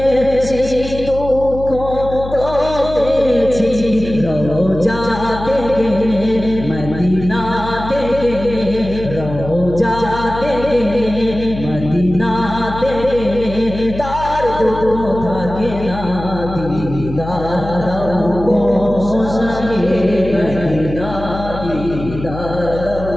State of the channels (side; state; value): left; noise; hum, 10 dB below the sound